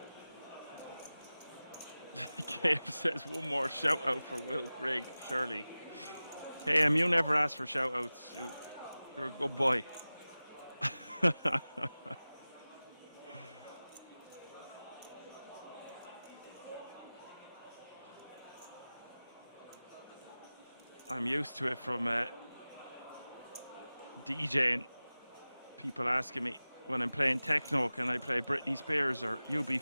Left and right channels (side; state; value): both; inverted; correlation -0.97